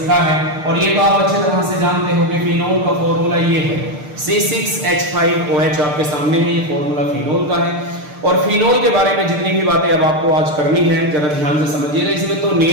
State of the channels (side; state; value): left; late; 6.6 ms